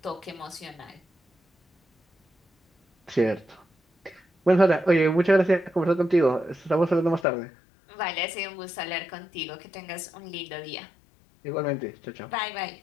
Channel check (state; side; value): drops out; right; at 7.2 s